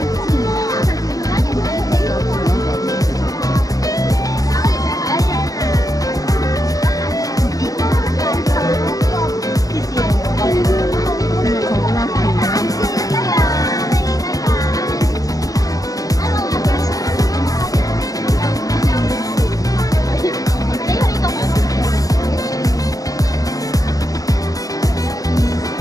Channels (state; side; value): late; right; 0.17 ms